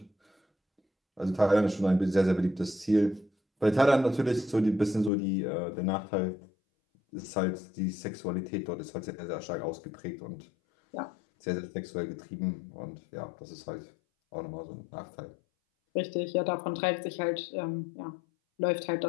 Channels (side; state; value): right; drops out; at 5.1 s